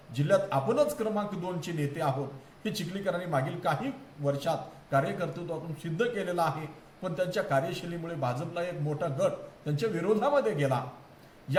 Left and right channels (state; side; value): identical; both; correlation 1.00